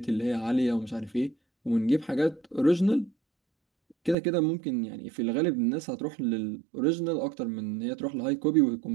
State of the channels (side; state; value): left; drops out; at 4.2 s